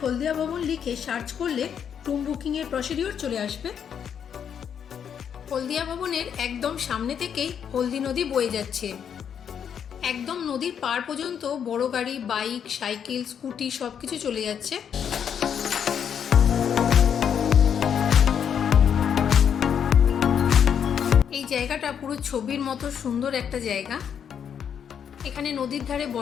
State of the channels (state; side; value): quieter; right; 8.1 dB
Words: হলদিয়া ভবন লিখে সার্চ করলে রুম বুকিংয়ের প্রসিডিওর চলে আসবে। হলদিয়া ভবনের একদম সামনে থেকেই হলদি নদী বয়ে যাচ্ছে। একদম নদীর পার পর্যন্ত বড় গাড়ি, বাইক, সাইকেল, স্কুটি সব কিছু চলে যাচ্ছে। এই জায়গাটা পুরো ছবির মতো সুন্দর একটা জায়গা। এখানে নদীর ধারে